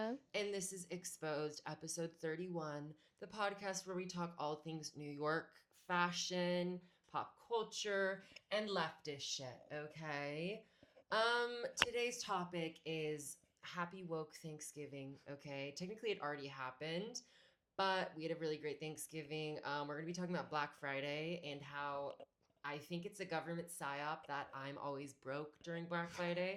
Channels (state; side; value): identical; both; correlation 1.00